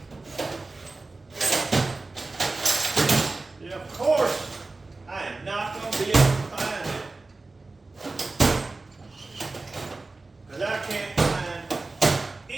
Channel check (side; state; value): left; quieter; 3.5 dB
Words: Yeah, of course. I am not going to be able to find it. Because I can't find